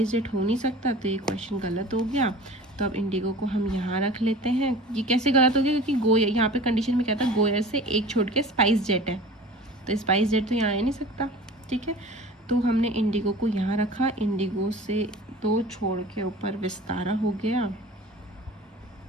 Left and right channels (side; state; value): both; normal; correlation 0.40